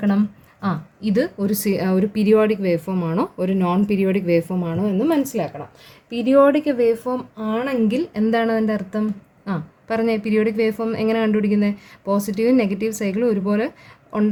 ഇത് ഒരു പീരിയോഡിക് വേവ് ഫോം ആണോ ഒരു നോൺ പീരിയോഡിക് വേവ് ഫോം ആണോ എന്ന് മനസ്സിലാക്കണം. പീരിയോഡിക് വേവ് ഫോം ആണെങ്കിൽ എന്താണ് അതിൻ്റെ അർത്ഥം? പറഞ്ഞേ, പീരിയോഡിക് വേവ് ഫോം എങ്ങനെ കണ്ടുപിടിക്കുന്നത്? പോസിറ്റീവും നെഗറ്റീവ് സൈക്കിളും ഒരുപോലെ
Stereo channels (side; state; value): both; identical; correlation 1.00